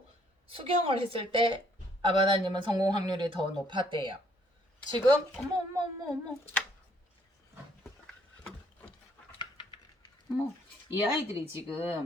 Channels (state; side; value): normal; both; correlation 0.66